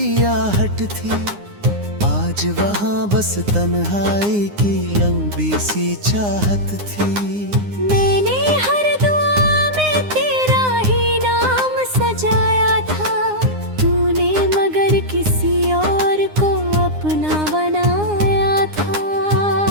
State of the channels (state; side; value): late; left; 9.7 ms